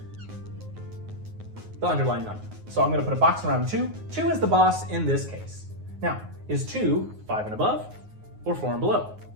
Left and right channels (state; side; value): late; left; 9.5 ms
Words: the underlying number. So I'm going to put a box around 2. 2 is the boss in this case. Now, is 2 5 and above or 4 and below?